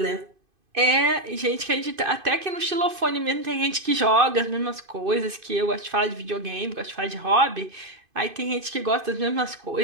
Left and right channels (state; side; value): late; left; 2.5 ms